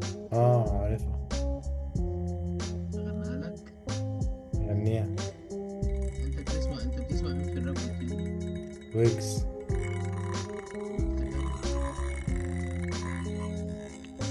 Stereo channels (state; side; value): identical; both; correlation 1.00